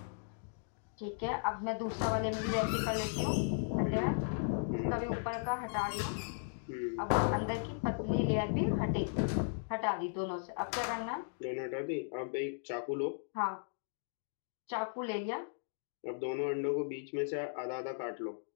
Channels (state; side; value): silent; right; digital silence